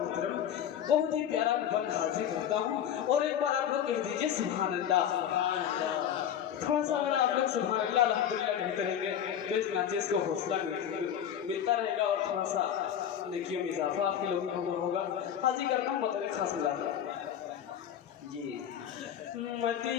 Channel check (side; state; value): right; quieter; 9.5 dB